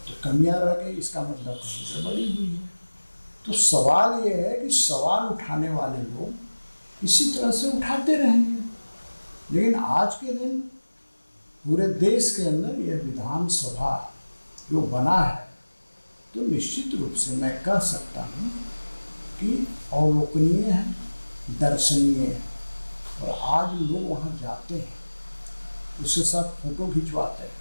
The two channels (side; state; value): both; inverted; correlation -1.00